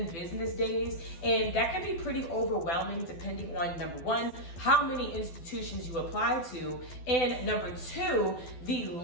business days. And that can be pretty overwhelming depending on, number one, how many institutions you apply to, and number two, the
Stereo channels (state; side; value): late; right; 12 ms